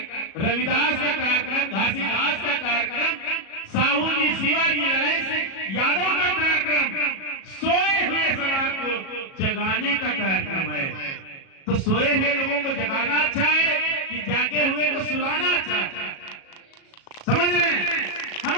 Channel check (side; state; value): right; late; 37 ms